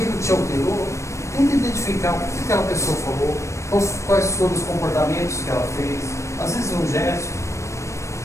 te alterou, tenta identificar o que aquela pessoa falou, quais foram os comportamentos que ela fez, às vezes um gesto,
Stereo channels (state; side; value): late; right; 0.14 ms